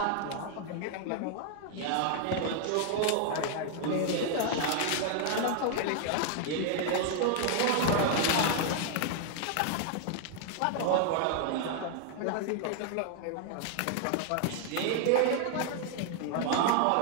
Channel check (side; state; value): both; different; correlation 0.00